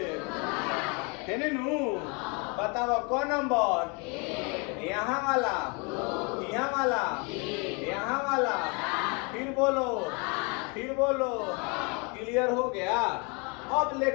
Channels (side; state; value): right; quieter; 32.2 dB